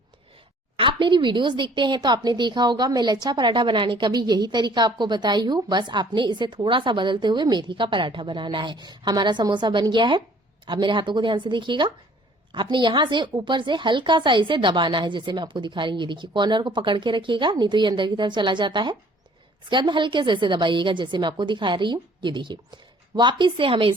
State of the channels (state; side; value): normal; both; correlation 0.56